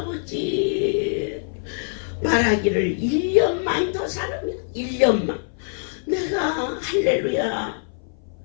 말하기를 1년만 더 살으면 1년만 내가 할렐루야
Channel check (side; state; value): right; silent; 58 dB below the other